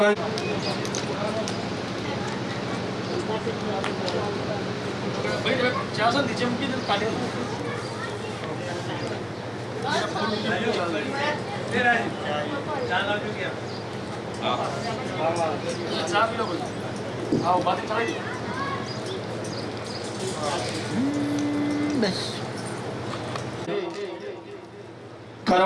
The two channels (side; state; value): both; identical; correlation 1.00